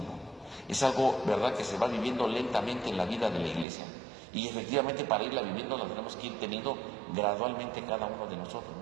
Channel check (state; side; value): drops out; left; at 3.7 s